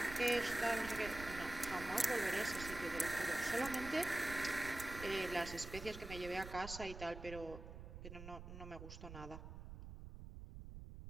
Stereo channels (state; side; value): noise; right; rumble, 11 dB below the sound